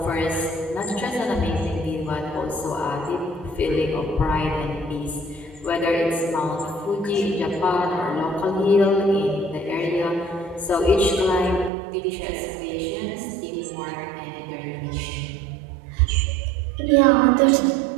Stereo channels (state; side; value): drops out; left; at 11.7 s